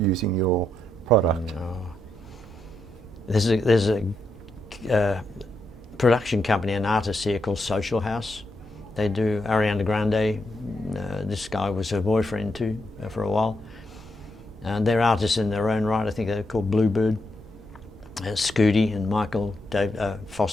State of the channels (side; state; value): both; normal; correlation 0.81